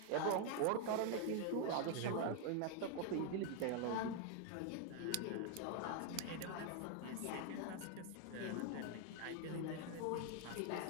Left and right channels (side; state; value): both; different; correlation 0.01